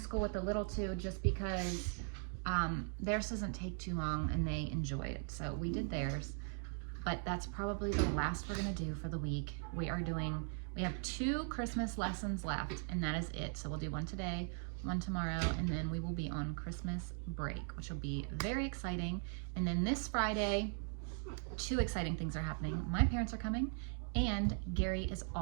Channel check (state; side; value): silent; left; 51 dB below the other